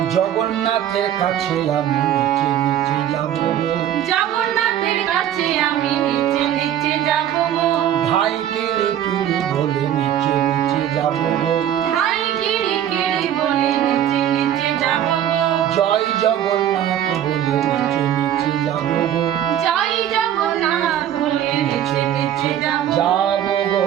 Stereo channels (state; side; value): quieter; left; 10.8 dB